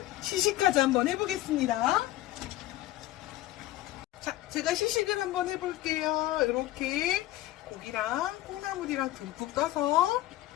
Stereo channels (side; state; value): right; quieter; 15.8 dB